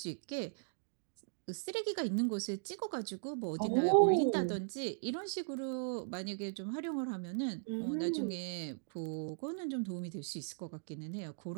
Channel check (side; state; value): left; silent; digital silence